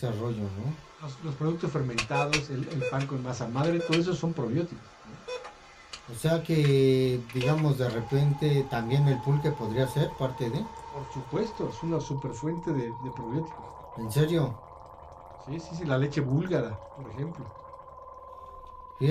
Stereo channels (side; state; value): both; identical; correlation 1.00